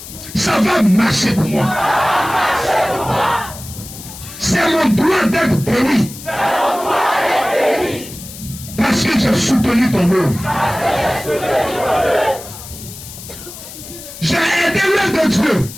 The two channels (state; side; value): noise; left; hiss, 14 dB below the sound